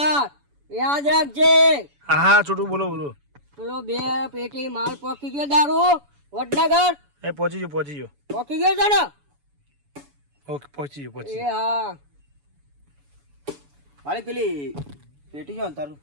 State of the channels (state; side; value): late; left; 7.0 ms